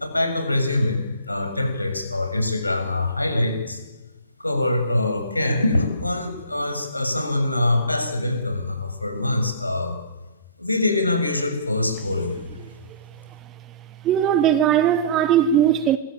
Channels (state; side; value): inverted; both; correlation -0.43